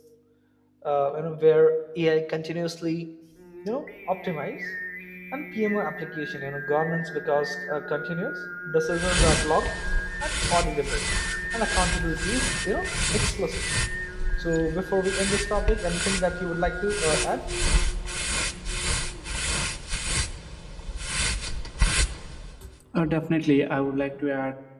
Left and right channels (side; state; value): both; identical; correlation 1.00